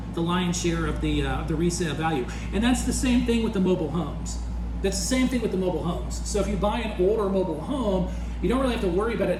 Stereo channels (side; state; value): both; identical; correlation 1.00